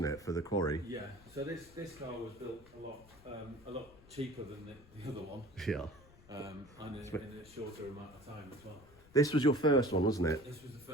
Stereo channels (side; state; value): left; noise; rumble, 24 dB below the sound